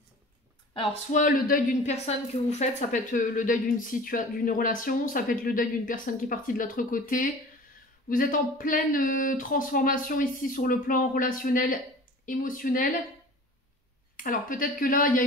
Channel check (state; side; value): normal; both; correlation 0.41